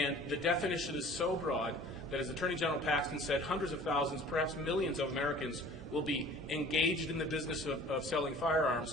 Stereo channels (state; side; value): normal; both; correlation 0.48